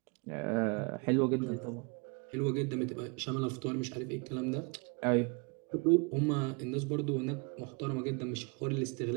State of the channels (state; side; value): quieter; left; 32.2 dB